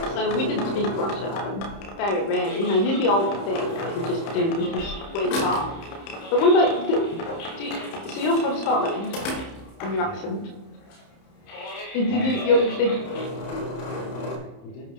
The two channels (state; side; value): late; right; 30 ms